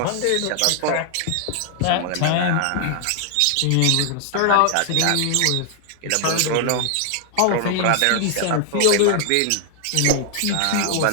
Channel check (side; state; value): both; different; correlation 0.00